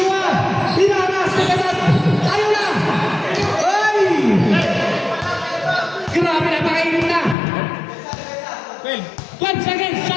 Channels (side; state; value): right; drops out; at 7.4 s